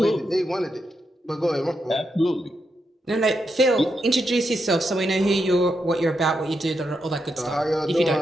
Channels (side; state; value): both; normal; correlation 0.83